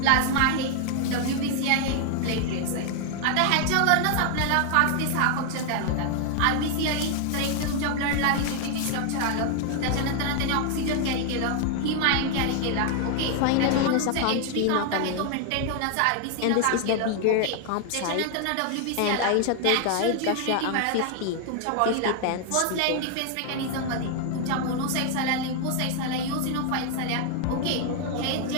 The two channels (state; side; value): different; both; correlation 0.00